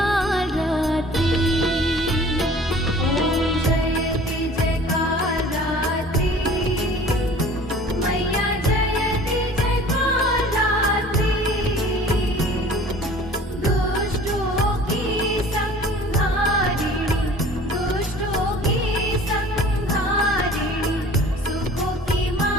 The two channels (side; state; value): both; normal; correlation 0.47